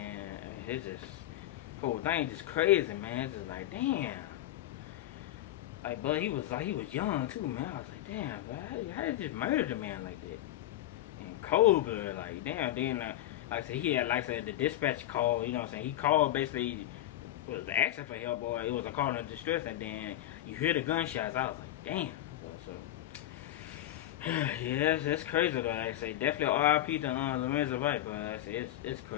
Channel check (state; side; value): quieter; right; 13.8 dB